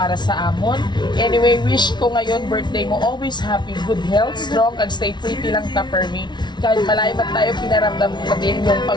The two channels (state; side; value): late; right; 0.21 ms